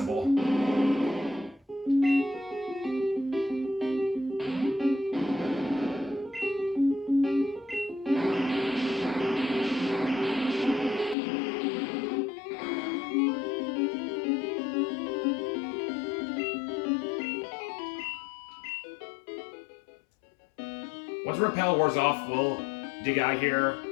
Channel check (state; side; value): drops out; right; at 11.2 s